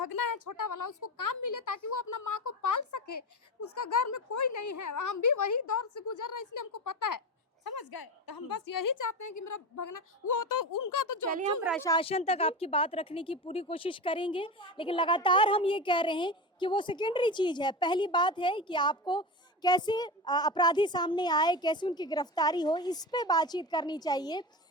है छोटा वाला, उसको काम मिले ताकि वो अपना माँ को पाल सके। उसका घर में कोई नहीं है, हम भी वही दौर से गुजर रहे हैं, इसलिए हमको पता है, समझ गए। तो हम बस यही चाहते हैं कि मेरा भगना, वो तो उनका तो चलिए हम प्रशासन तक आपकी बात रखने की पूरी कोशिश करेंगे, लेकिन लगातार हम ये कह रहे हैं कि वो सेकेंडरी चीज है। पहली बात है कि आपको कैसे अपराधी सामने आए, कैसे उनकी गिरफ्तारी हो, इस पे बातचीत करनी चाहिए।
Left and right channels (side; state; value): both; normal; correlation 0.24